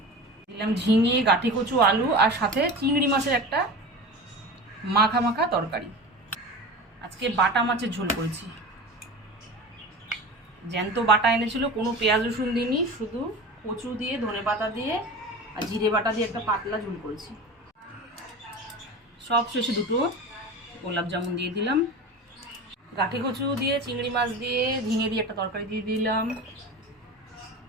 দিলাম ঝিঙে গাঠি কচু আলু, আর সাথে চিংড়ি মাছের একটা মাখা মাখা তরকারি। আজকে বাটা মাছের ঝোল করেছি, জ্যান্ত বাটা এনেছিল, কোনো পেঁয়াজ রসুন দিইনি, শুধু কচু দিয়ে ধনেপাতা দিয়ে আর জিরে বাটা দিয়ে একটা পাতলা ঝোল করেছি। সব শেষে দুটো গোলাপ জামুন দিয়ে দিলাম, গাঠি কচু দিয়ে চিংড়ি মাছ দিয়ে ঝিঙে দিয়ে একটা তরকারি দিয়ে দিলাম,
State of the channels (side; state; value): both; normal; correlation 0.32